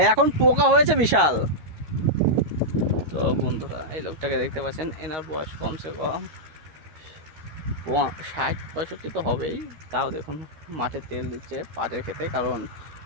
এখন পোকা হয়েছে বিশাল। তো বন্ধুরা এই লোকটাকে দেখতে পাচ্ছেন, এনার বয়স কমসে কম 60-65 তো হবেই। তাও দেখুন মাঠে তেল দিচ্ছে পাটের খেতে, কারণ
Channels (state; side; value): late; left; 13 ms